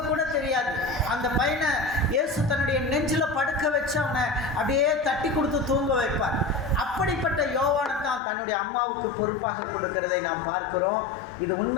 கூட தெரியாது. அந்த பையனை இயேசு தன்னுடைய நெஞ்சில் படுக்க வச்சு அவனை அப்படியே தட்டி கொடுத்து தூங்க வைப்பார். அப்படிப்பட்ட யோவானை தான் தன்னுடைய அம்மாவுக்கு பொறுப்பாக கொடுக்கிறதை நாம் பார்க்கிறோம். இது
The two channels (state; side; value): drops out; right; at 8.2 s